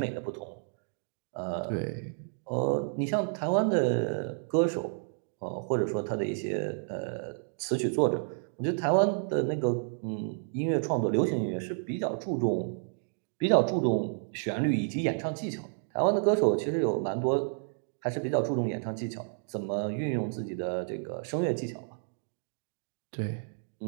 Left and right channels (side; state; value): left; silent; digital silence